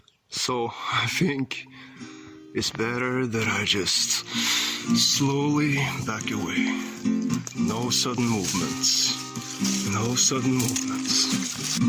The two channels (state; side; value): identical; both; correlation 1.00